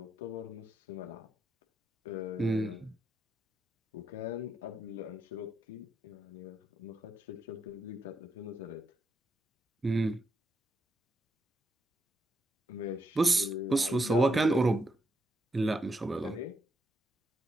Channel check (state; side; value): normal; both; correlation 0.81